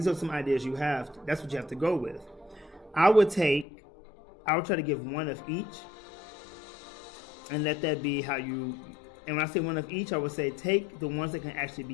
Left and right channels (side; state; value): right; drops out; at 3.7 s